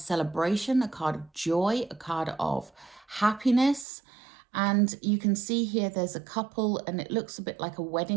a card of joy, a card of happiness. And you can see here there's a couple, and it looks a bit like a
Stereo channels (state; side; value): drops out; left; at 3.9 s